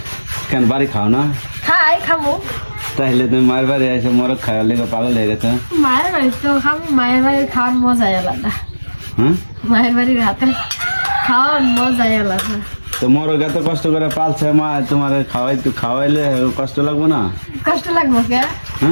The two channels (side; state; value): both; inverted; correlation -1.00